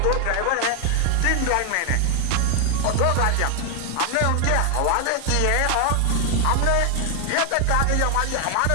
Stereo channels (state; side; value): different; both; correlation 0.00